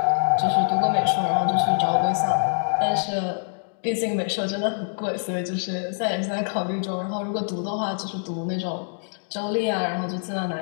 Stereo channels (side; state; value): right; silent; digital silence